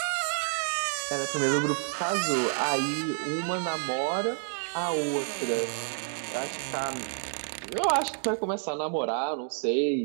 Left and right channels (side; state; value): left; silent; 58 dB below the other